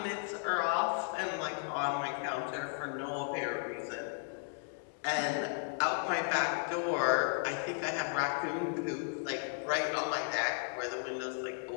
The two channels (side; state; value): right; silent; 54 dB below the other